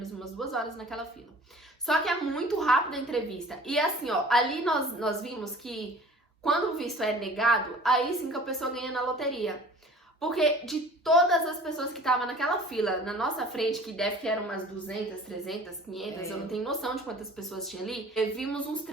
umas 2 horas naquela fila. Só que é muito rápida a entrevista. E assim, ó, ali nós vimos que quando o visto é negado, aí sim que a pessoa ganha na loteria. Porque de todas as pessoas que estavam naquela fila na nossa frente, que deve que eram umas 200, 300, 500, eu não tenho noção de quantas pessoas tinha ali, vimos uns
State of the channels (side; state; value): both; normal; correlation 0.46